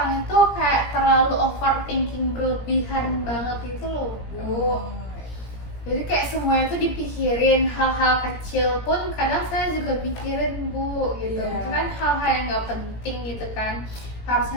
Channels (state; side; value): late; right; 17 ms